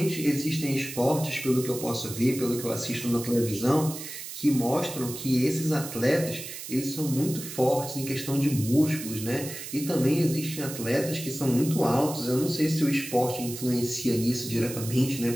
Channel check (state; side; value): noise; right; hiss, 10 dB below the sound